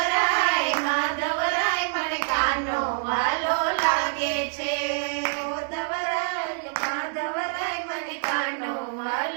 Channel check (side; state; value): left; silent; digital silence